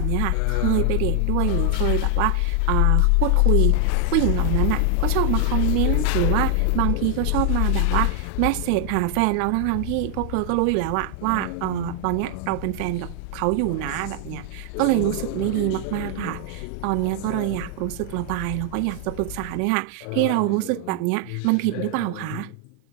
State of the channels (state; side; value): different; both; correlation 0.00